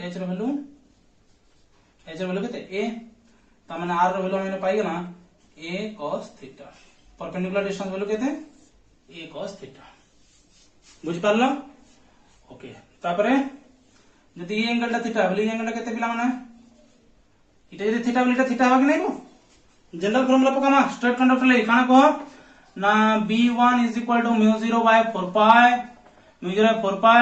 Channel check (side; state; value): both; identical; correlation 1.00